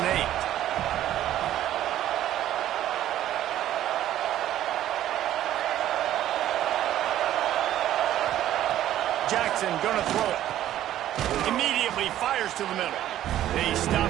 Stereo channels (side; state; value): left; quieter; 12.5 dB